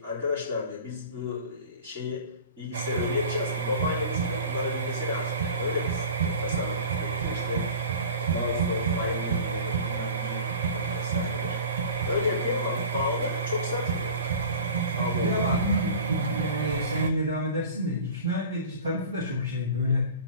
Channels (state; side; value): inverted; both; correlation -0.39